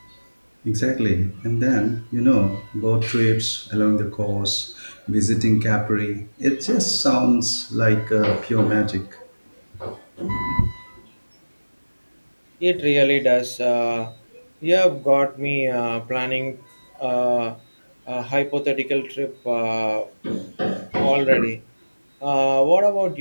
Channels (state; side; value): inverted; both; correlation -1.00